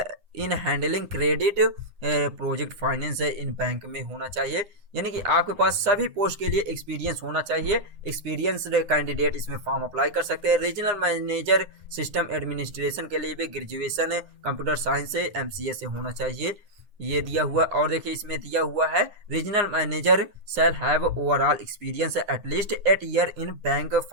इन handling credit project finance in bank में होना चाहिए, यानी कि आपके पास सभी पोस्ट के लिए एक्सपीरियंस होना चाहिए। एक्सपीरियंस कैंडिडेट इसमें फॉर्म अप्लाई कर सकते हैं। रीजनल मैनेजर सिस्टम एडमिनिस्ट्रेशन के लिए भी ग्रेजुएशन कंप्यूटर साइंस से MCA से होना चाहिए, ये दिया हुआ। और देखिए इसमें दिया हुआ है regional manager shall have overall experience at least 8 year in bank,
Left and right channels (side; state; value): left; late; 9.7 ms